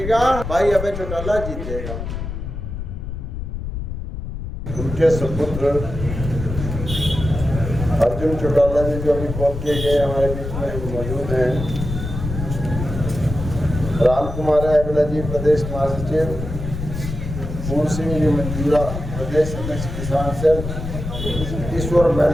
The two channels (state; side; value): noise; left; rumble, 6 dB below the sound